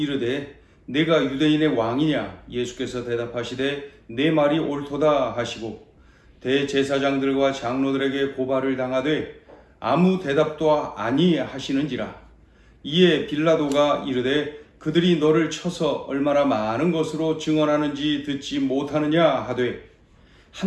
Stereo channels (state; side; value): identical; both; correlation 1.00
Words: 내가 유대인의 왕이냐? 예수께서 대답하시되 내 말이 옳도다 하시고 대제사장들과 장로들에게 고발을 당하되 아무 대답도 아니하시는지라. 이에 빌라도가 이르되 그들이 너를 쳐서 얼마나 많은 것으로 증언하는지 듣지 못하느냐 하되